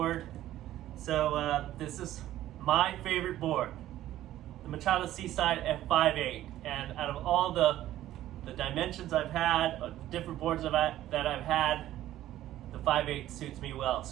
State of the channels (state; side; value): quieter; left; 13.6 dB